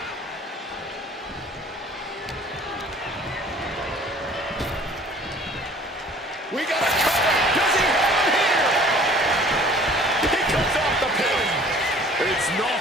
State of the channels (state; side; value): normal; both; correlation 0.51